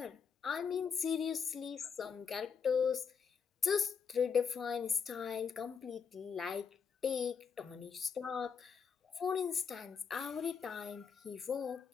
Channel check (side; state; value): right; quieter; 6.3 dB